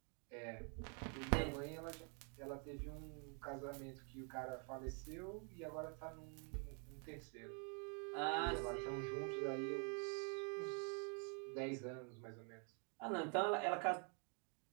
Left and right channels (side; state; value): left; quieter; 39.9 dB